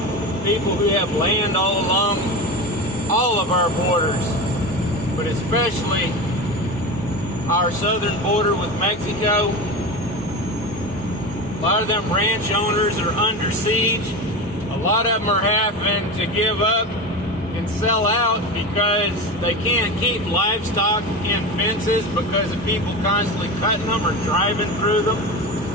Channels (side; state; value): both; normal; correlation 0.25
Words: people who have land all along all of our borders, but especially our southern border with Mexico. A lot of them ranch owners are under siege. A lot of them are having to give up and sell out because they can't keep livestock in fences because of people constantly cutting them or driving through them.